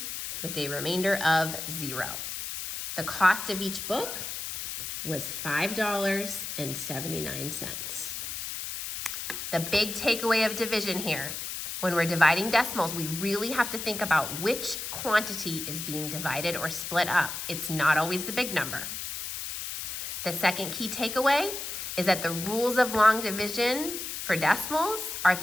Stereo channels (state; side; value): noise; left; hiss, 6 dB below the sound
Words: with a remainder of 0. The cost of each book was $5.79. The big takeaway of division here, when we're dividing decimals, we really have to think about which quantity is being divided or split up. It's not always the big number. The second key takeaway is that the rules of long division for decimals are